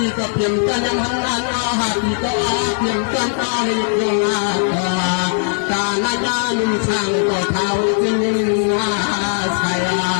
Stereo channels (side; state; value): right; silent; 67 dB below the other